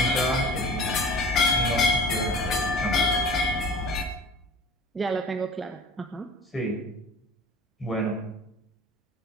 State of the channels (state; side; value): normal; both; correlation 0.39